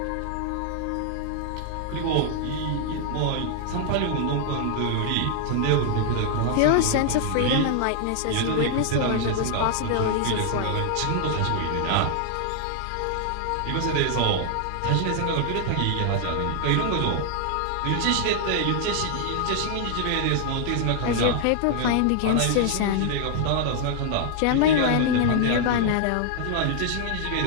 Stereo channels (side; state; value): both; different; correlation 0.00